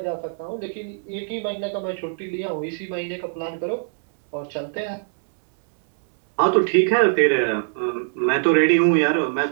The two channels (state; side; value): silent; left; digital silence